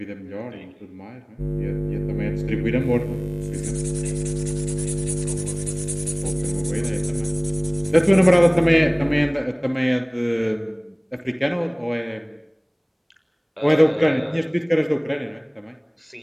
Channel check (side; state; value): both; identical; correlation 1.00